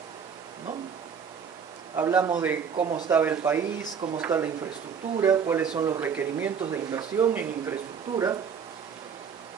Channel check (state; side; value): quieter; left; 6.8 dB